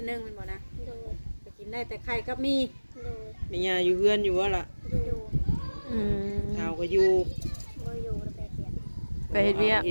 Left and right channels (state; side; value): inverted; both; correlation -1.00